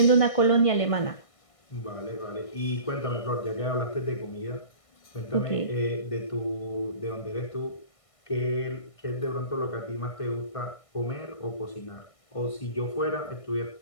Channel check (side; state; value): right; late; 1.6 ms